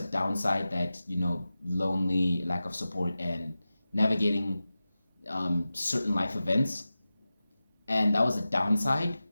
downside that, lonely, lack of support, and navigating certain life events. And that was a downside.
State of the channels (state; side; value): inverted; both; correlation -0.94